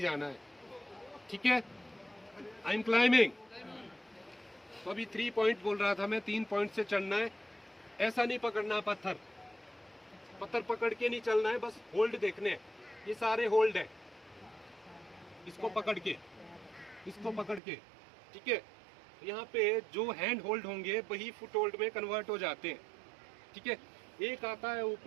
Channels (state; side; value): drops out; left; at 17.6 s